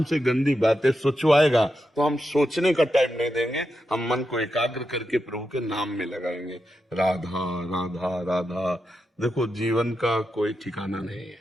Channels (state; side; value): normal; both; correlation 0.87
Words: गंदी बातें सोचवाएगा, तो हम सोचने का टाइम नहीं देंगे। हम मन को एकाग्र करके प्रभु के नाम में लगाएंगे। राधा राधा राधा। देखो, जीवन का कोई ठिकाना नहीं है,